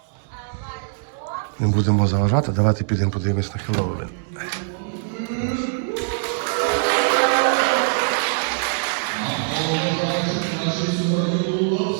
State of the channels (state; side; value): silent; left; digital silence